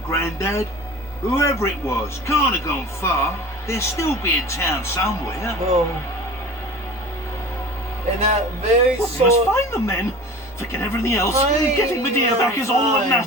Grandad. Whoever it was, can't have gone far. They'll still be in town somewhere. Oh. And that very We must short find them then. Forget everything else. Fine, Getting Medea back is all that fine.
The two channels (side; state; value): both; normal; correlation 0.39